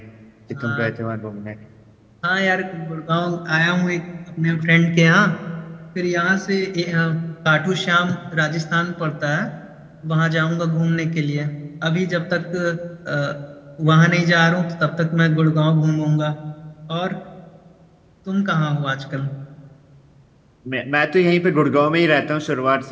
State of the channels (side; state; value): both; identical; correlation 1.00